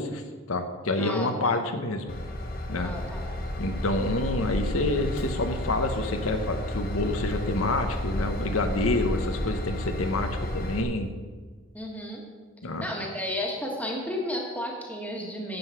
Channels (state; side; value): normal; both; correlation 0.35